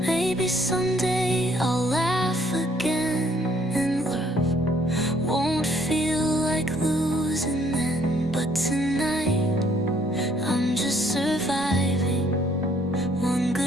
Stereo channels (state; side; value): normal; both; correlation 0.64